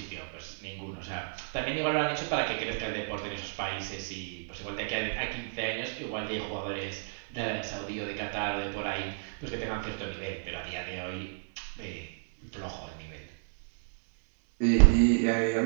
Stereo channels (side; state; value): left; silent; digital silence